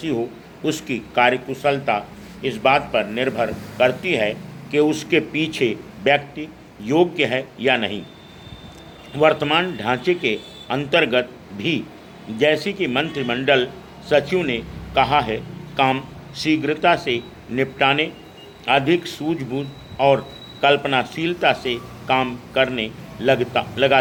हो, उसकी कार्यकुशलता इस बात पर निर्भर करती है कि उसके पीछे व्यक्ति योग्य है या नहीं। वर्तमान ढांचे के अंतर्गत भी, जैसे कि मंत्रिमंडल सचिव ने कहा है, काम शीघ्रता से निपटाने, अधिक सूझबूझ और कल्पनाशीलता से काम करने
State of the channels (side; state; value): both; identical; correlation 1.00